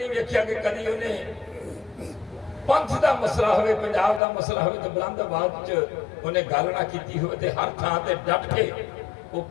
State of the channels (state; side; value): drops out; right; at 4.2 s